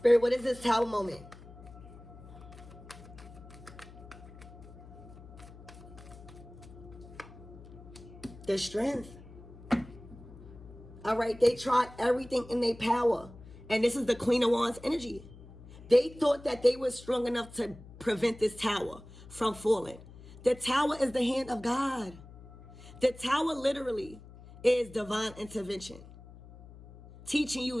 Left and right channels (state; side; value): noise; left; hum, 18 dB below the sound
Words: what is this Tower moment? The strength. All right, they tried everything in their power. And this is the Queen of Wands energy. They thought that they were strong enough to prevent this tower from falling. The tower is the hand of God. The tower literally is divine intervention, teaching